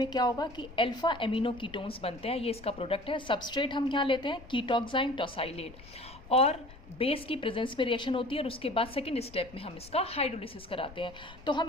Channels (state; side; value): noise; left; rumble, 19 dB below the sound